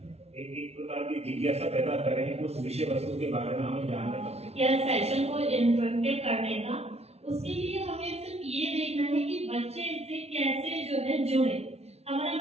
एक प्रकार की जिज्ञासा पैदा करें उस विषय वस्तु के बारे में हमें जानने का। यह सेशन को इंटरेक्टिव करने का, उसके लिए हमें सिर्फ ये देखना है कि बच्चे इससे कैसे जो है जुड़े। हमारा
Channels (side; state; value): left; late; 0.31 ms